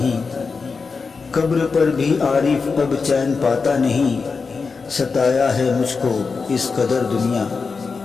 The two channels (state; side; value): quieter; right; 4.8 dB